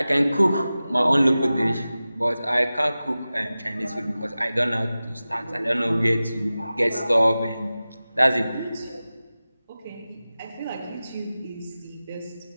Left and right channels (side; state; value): both; inverted; correlation -0.96